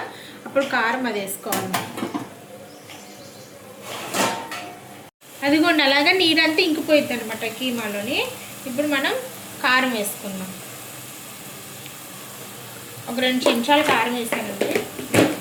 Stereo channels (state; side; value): identical; both; correlation 1.00